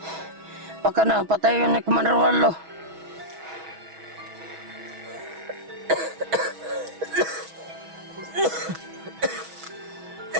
Baka na, patay yun ni Commander Wallo.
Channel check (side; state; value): left; late; 6.2 ms